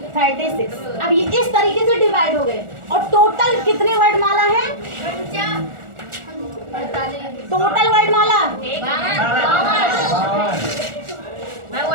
36। अब ये इस तरीके से डिवाइड हो गए। और टोटल कितने वर्णमाला है, टोटल वर्णमाला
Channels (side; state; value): left; late; 1.4 ms